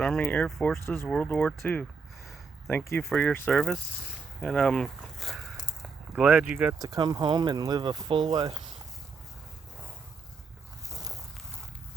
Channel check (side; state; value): left; quieter; 4.8 dB